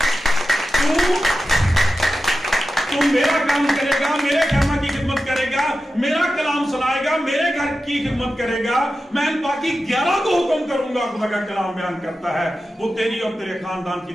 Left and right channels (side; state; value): both; normal; correlation 0.92